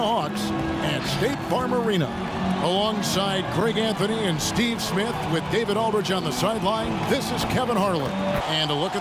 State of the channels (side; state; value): both; identical; correlation 1.00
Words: Hawks at State Farm Arena. Alongside Greg Anthony and Steve Smith with David Aldridge on the sideline, this is Kevin Harlan. And a look